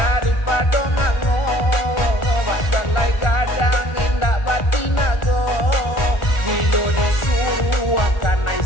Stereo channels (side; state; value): right; late; 1.4 ms